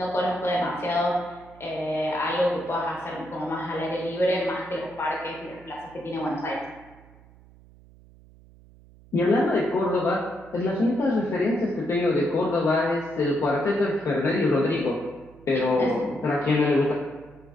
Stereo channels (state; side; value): noise; right; hum, 24 dB below the sound